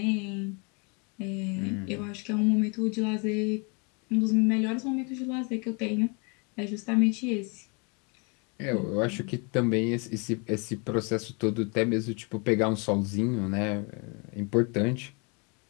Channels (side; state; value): right; quieter; 33.5 dB